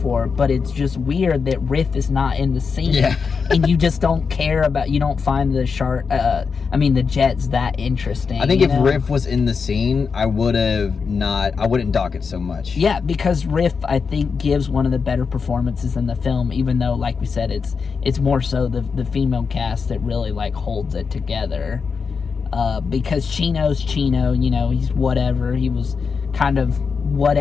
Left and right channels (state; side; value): quieter; right; 5.4 dB